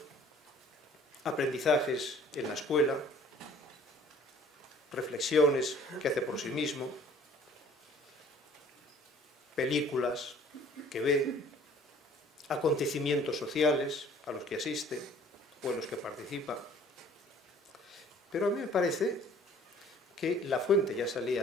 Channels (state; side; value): normal; both; correlation 0.54